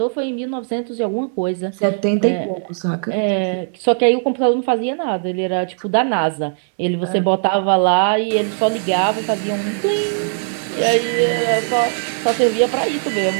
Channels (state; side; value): silent; left; digital silence